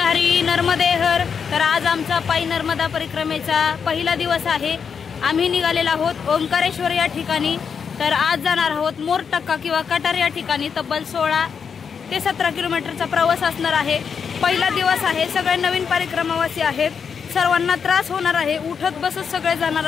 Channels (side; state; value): right; quieter; 6.5 dB